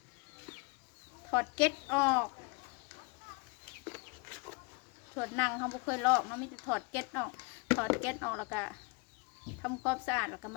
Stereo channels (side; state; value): right; quieter; 31.1 dB